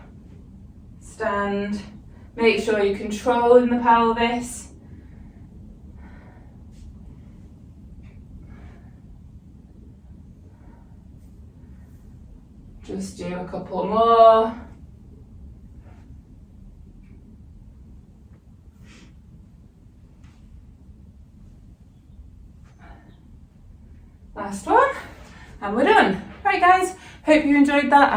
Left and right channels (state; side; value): identical; both; correlation 1.00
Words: stand. Make sure you're controlling the pelvis. Just do a couple more. Last one, and we're done. Right guys, hope you enjoyed that.